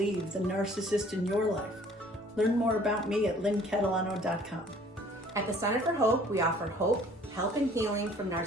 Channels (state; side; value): normal; both; correlation 0.54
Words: the Narcissist in Your Life. Learn more about me at lynncatalano.com. At the Center for Hope, we offer hope, help, and healing from